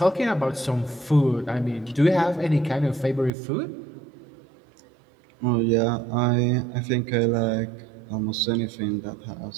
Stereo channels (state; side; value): drops out; left; at 3.3 s